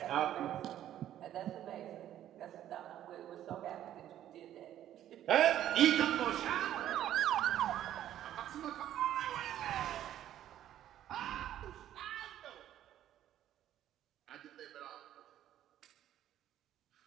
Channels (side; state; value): left; quieter; 11.8 dB